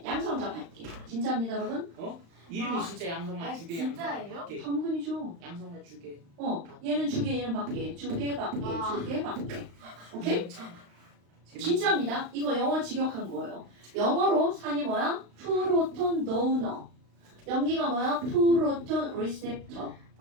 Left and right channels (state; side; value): late; left; 35 ms